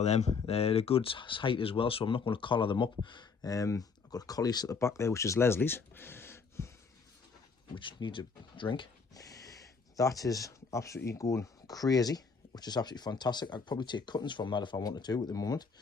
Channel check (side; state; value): right; quieter; 5.1 dB